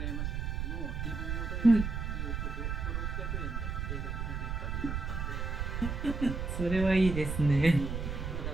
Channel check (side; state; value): right; noise; rumble, 3 dB below the sound